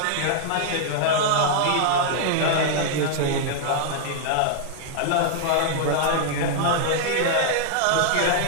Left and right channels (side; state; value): both; different; correlation -0.01